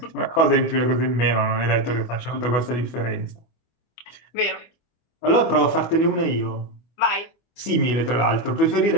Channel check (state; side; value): late; right; 24 ms